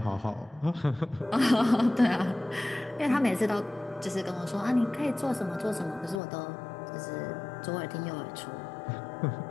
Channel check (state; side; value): drops out; right; at 6.2 s